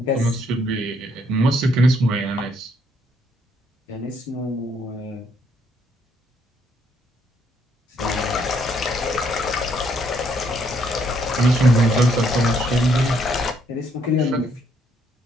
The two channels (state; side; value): normal; both; correlation 0.70